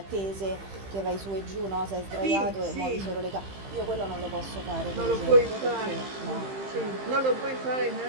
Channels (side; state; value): left; late; 15 ms